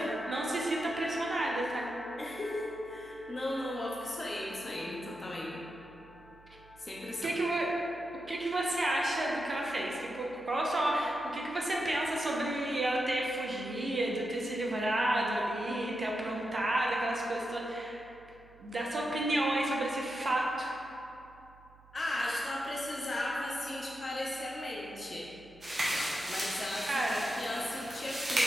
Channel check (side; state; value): right; noise; hum, 25 dB below the sound